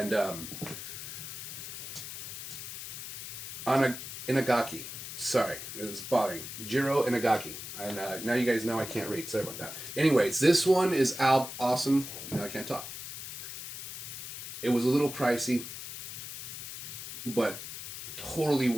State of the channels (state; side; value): noise; left; hiss, 9 dB below the sound